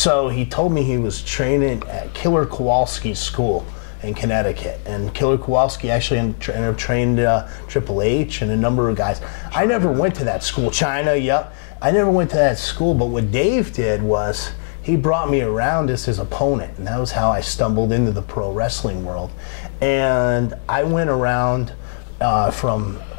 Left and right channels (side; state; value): right; silent; 64 dB below the other